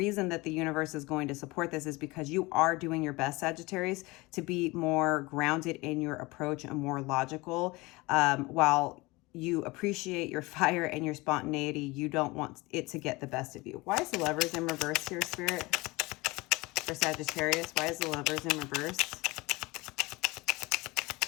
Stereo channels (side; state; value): right; quieter; 23.0 dB